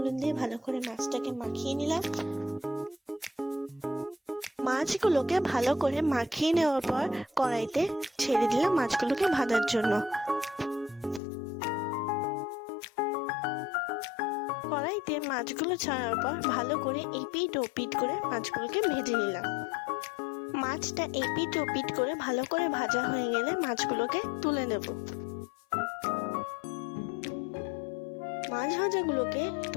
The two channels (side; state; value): right; drops out; at 11.2 s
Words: দিয়ে ভালো করে মাছটাকে মাখিয়ে নিলাম। মাছগুলোকে ভালো করে মাখিয়ে নেওয়ার পর কড়াইতে ছেড়ে দিলাম মাছগুলোকে ভাজার জন্য। কড়াইতে মাছগুলো ছাড়ার পর ভালো করে এপিট ওপিট করে মাছগুলোকে ভেজে নিলাম। মাছটা এপিট ওপিট করে ভালো করে ভাজা হয়ে গেলে মাছগুলোকে তুলে নেব। মাছ ভাজাগুলোকে